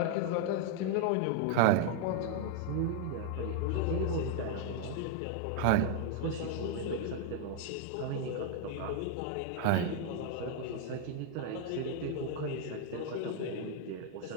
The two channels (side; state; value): both; different; correlation 0.00